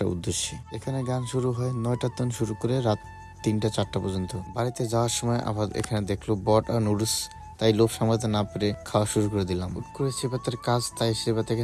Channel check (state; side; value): identical; both; correlation 1.00